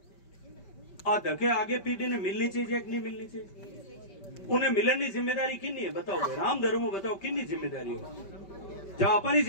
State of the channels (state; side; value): late; right; 5.1 ms